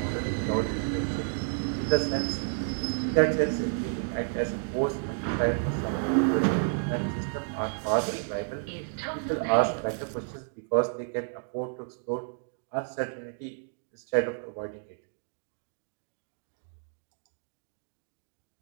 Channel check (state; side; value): silent; left; digital silence